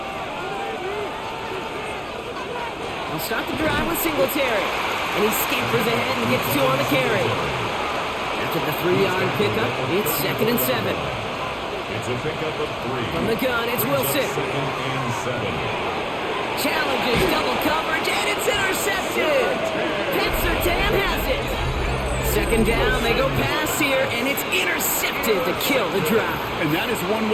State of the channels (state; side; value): identical; both; correlation 1.00